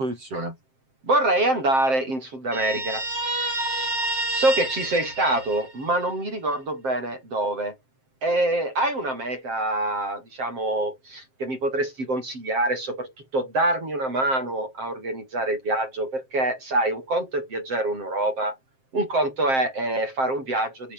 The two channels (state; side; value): late; left; 7.6 ms